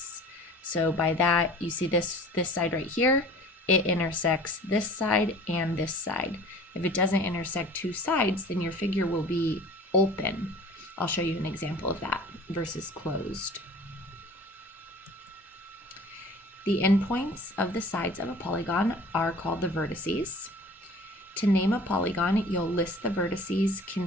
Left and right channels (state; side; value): normal; both; correlation 0.45